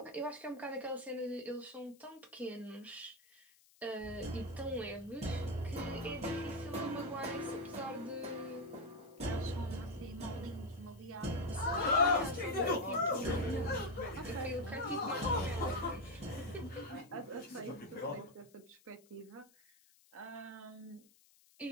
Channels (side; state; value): left; noise; hiss, 28 dB below the sound